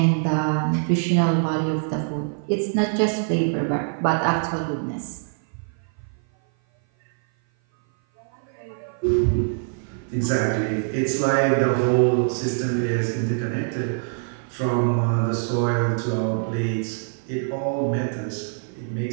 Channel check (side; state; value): left; silent; 56 dB below the other